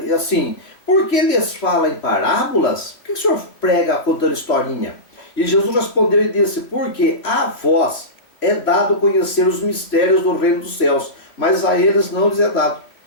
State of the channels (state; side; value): late; right; 3.0 ms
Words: assim: por que lhes fala em parábolas? Por que o senhor prega contando historinha? E Jesus respondeu e disse: porque a vós é dado conhecer os mistérios do reino dos céus, mas a eles não lhes é dado.